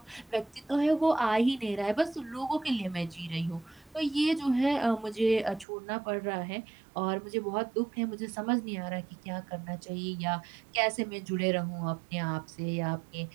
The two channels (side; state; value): left; drops out; at 5.7 s